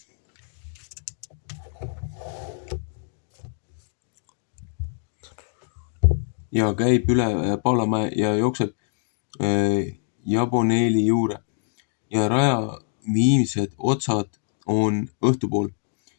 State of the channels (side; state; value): right; silent; 62 dB below the other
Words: käib üle Paalamäe ja jookseb Jaboneeli juure. Ja raja viimsed otsad on õhtupool